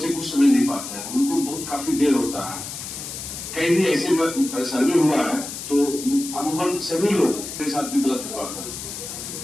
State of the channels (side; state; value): left; noise; hiss, 8 dB below the sound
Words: कुछ समझ नहीं पाते हैं, उनको बहुत काफी देर होता है। कहीं भी ऐसे सर्वे हुआ है तो अमूमन सभी लोग के साथ भी गलत हुआ था,